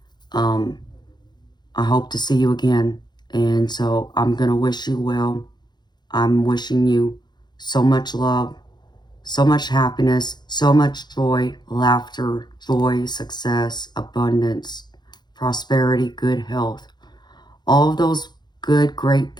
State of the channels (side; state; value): right; late; 0.21 ms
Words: I hope to see you again. And so I'm gonna wish you well. I'm wishing you so much love, so much happiness, so much joy, laughter, joy, success, abundance, prosperity, good health. All of those good, great